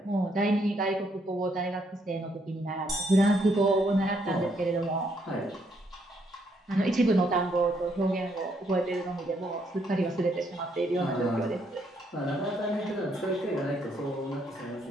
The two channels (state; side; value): normal; both; correlation 0.73